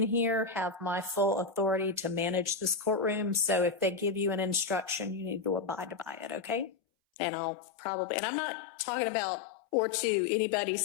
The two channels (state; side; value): drops out; right; at 6.7 s